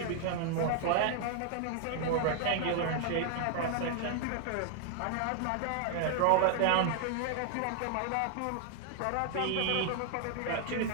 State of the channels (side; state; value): both; different; correlation 0.00